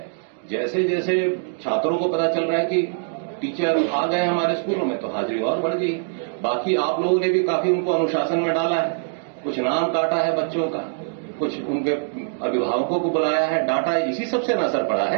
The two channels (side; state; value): left; silent; digital silence